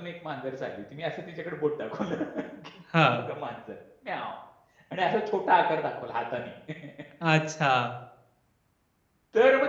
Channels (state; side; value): identical; both; correlation 1.00